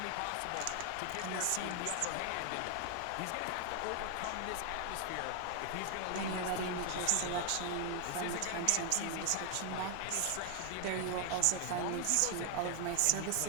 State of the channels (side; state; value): both; different; correlation 0.00